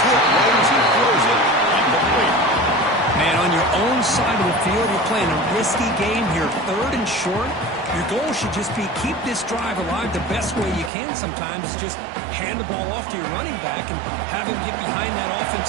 hit low as he throws it. Incomplete. Man, on your own side of the field, you're playing a risky game here. 3rd and short. Your goal should just be keep this drive alive the best way you can sometimes. Is just hand the ball off to your running back and have him get behind that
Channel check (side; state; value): left; drops out; at 10.9 s